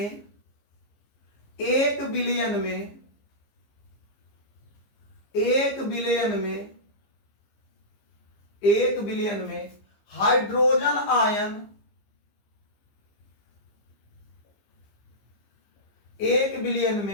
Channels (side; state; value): right; late; 15 ms